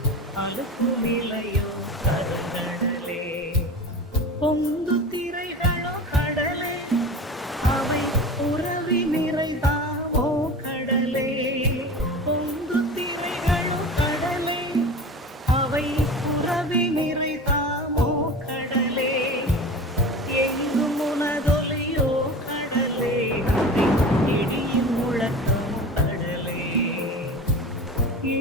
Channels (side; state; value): both; normal; correlation 0.33